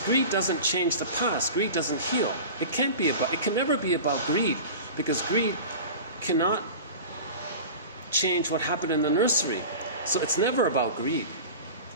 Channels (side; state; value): both; inverted; correlation -0.34